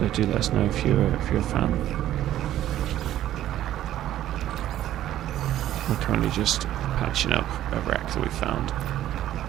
do let us know if you're a fan. We're currently just patching up a wreck that we found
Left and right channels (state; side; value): quieter; left; 12.8 dB